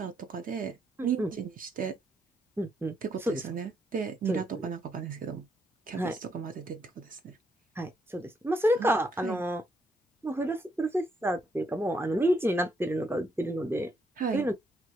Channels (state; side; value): normal; both; correlation 0.76